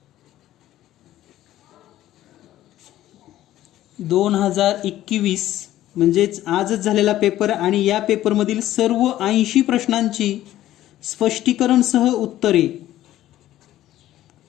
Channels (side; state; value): right; quieter; 13.8 dB